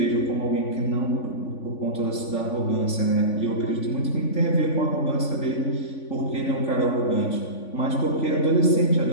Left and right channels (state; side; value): late; right; 3.5 ms